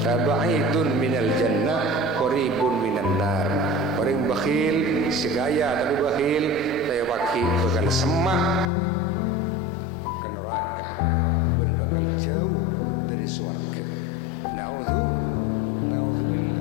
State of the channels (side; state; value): right; drops out; at 8.7 s